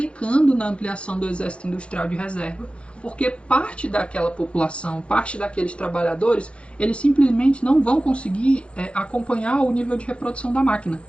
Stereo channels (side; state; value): right; late; 0.060 ms